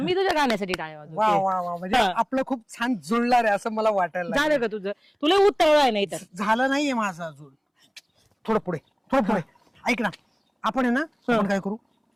तुझ्या गाण्यासाठी टाळ्या वा वाजवते. वा वा म्हणजे हा. आपलं खूप छान जुळणार आहे असं मला वाटायला झालं लागलं. का तुझं? तुला उत्तर आहे नाही तर. झालं नाहीये माझं अजून. थोडं पुढे ऐक ना आपण आहे ना आपण काय करू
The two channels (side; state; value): both; identical; correlation 1.00